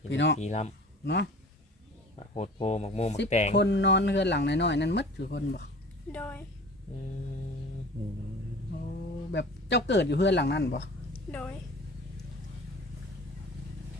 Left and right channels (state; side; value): normal; both; correlation 0.42